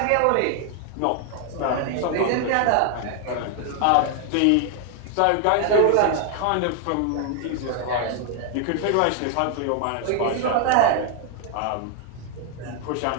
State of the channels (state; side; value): different; both; correlation 0.00